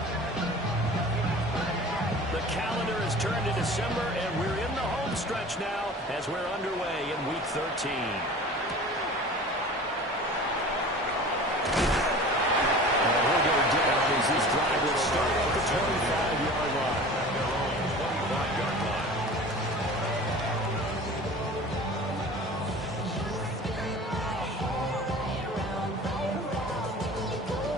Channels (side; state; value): both; normal; correlation 0.40